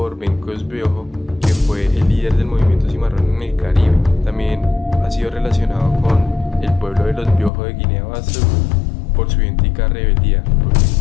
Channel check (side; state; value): right; drops out; at 7.5 s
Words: Bencos Biojo, que fue el líder del movimiento cimarrón en el Caribe. También ha sido relacionado con el pueblo de los Biojo de Guinea-Bissau por su idéntica rebeldía, por el